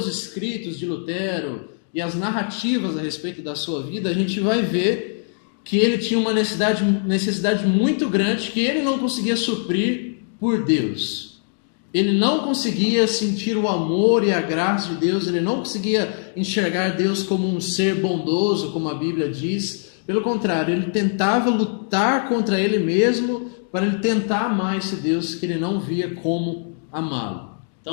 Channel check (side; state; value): right; silent; digital silence